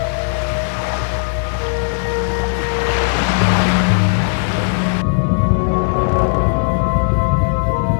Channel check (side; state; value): right; silent; 68 dB below the other